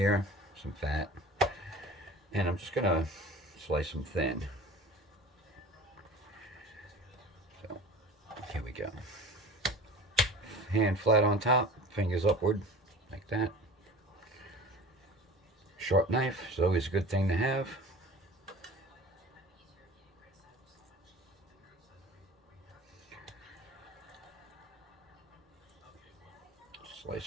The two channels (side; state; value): both; normal; correlation 0.40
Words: some fat, and I'm just gonna slice them thin. So here we go. Hand flat on top, fingers upward, like that. Sharp knife is always a good thing to have.